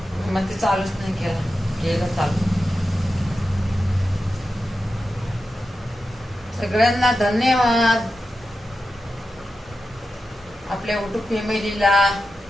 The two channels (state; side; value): normal; both; correlation 0.91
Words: मग ते चालूच नाही केलं चालू. सगळ्यांना धन्यवाद. आपल्या युट्यूब फॅमिलीला.